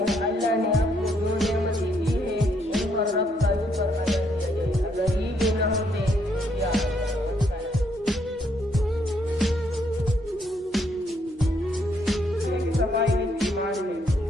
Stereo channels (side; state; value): both; normal; correlation 0.72